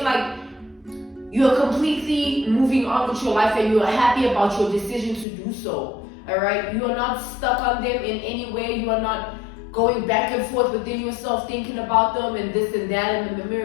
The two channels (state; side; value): drops out; right; at 5.2 s